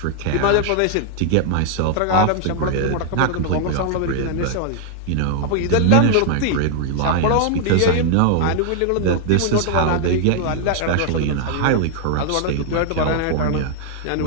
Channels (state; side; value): different; both; correlation 0.00